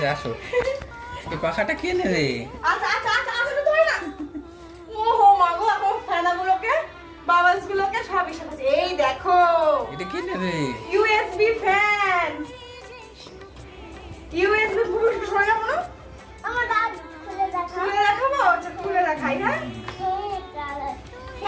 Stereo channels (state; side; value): identical; both; correlation 1.00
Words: আসো। এই পাখাটা কে নেবে? আচ্ছা, আমি তো ধরে না। ওহো মা গো, এখন ফ্যানগুলোকে, বাবাসগুলোকে সবই সাজাচ্ছে। এই দেখো, এটা কে নেবে? USB fan. USB পুরো সরে যাবো না? খুলে দেখাবো? আচ্ছা, খুলে দেখাই।